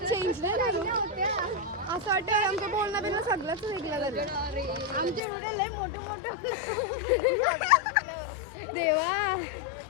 चेंज नाही करू. असं वाटतं आमचं बोलणं बिलणं सगळंच वेगळं झालं. आमचे व्हिडिओ लय मोठे मोठे. देवा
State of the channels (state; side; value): drops out; right; at 5.2 s